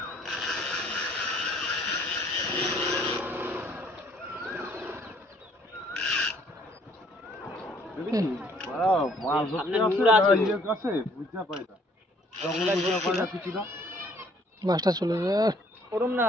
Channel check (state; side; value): normal; both; correlation 0.61